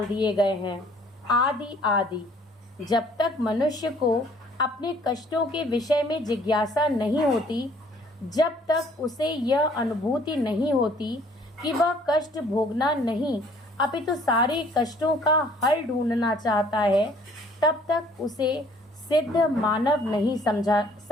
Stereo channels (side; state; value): both; normal; correlation 0.58